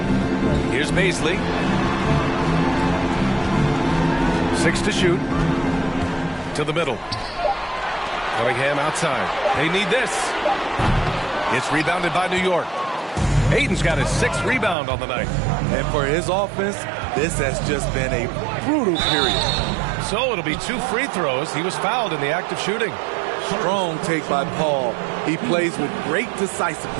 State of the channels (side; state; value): left; drops out; at 14.8 s